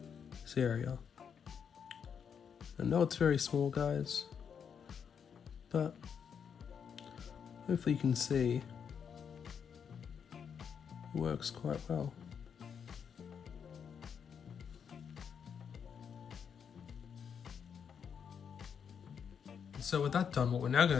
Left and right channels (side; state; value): right; quieter; 7.2 dB